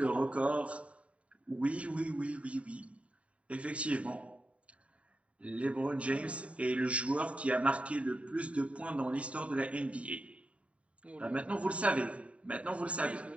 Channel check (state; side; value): late; left; 0.064 ms